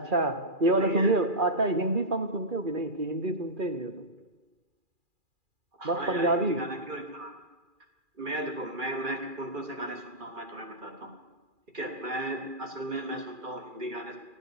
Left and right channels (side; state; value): left; late; 2.4 ms